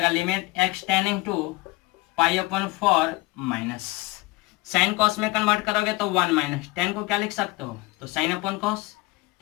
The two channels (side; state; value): right; quieter; 22.6 dB